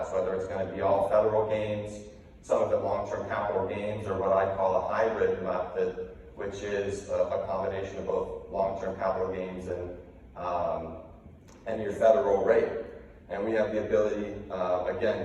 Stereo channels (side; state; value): both; identical; correlation 1.00